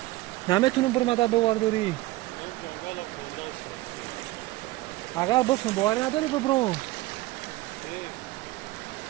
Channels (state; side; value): quieter; left; 18.9 dB